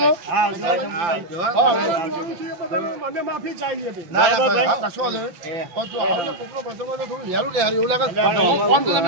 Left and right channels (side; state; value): left; late; 5.9 ms